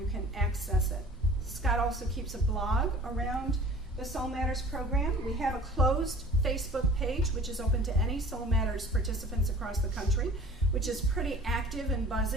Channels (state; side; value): normal; both; correlation 0.47